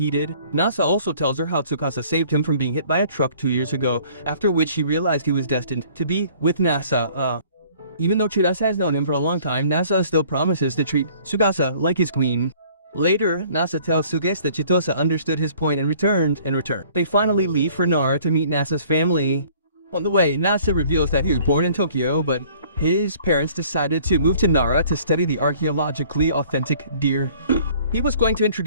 did. Nasa also tells her how Tsukasa saved him from being hit by a truck 2 years ago, after which he realized he was destined to be with Nasa. Even though Chitose has known him for a long time, Nasa still promises to treat Tsukasa like his queen. Later, Nasa tells Tsukasa that Chitose understood his point and returned. They finally leave for Nara to meet Nasa's family. On the way, Nasa reveals that he was born in Tokyo, but his parents decided to move to Nara to study the archaeologically authentic deer. He was going to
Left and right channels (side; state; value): both; inverted; correlation -0.55